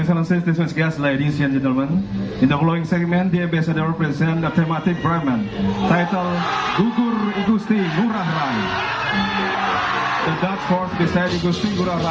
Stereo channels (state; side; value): identical; both; correlation 1.00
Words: Excellencies, distinguished guests, ladies and gentlemen, in the following segment, the ambassador present a thematic Brahman titled Gugur Igusti Ngurah Rai. The Dutch force beside Igusti Ngurah